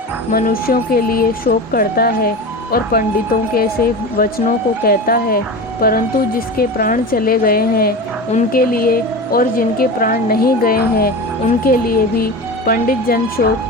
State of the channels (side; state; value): both; normal; correlation 0.28